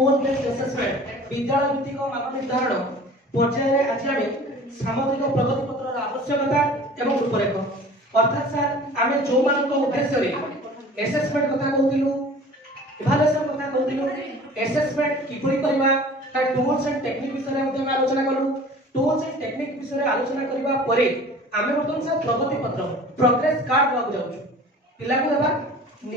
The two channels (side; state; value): both; normal; correlation 0.44